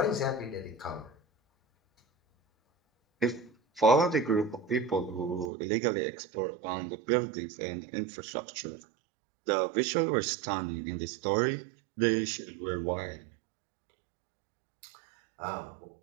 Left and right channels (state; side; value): drops out; left; at 5.5 s